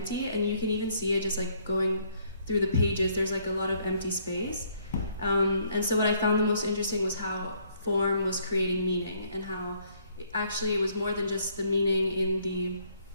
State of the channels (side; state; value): both; inverted; correlation -0.66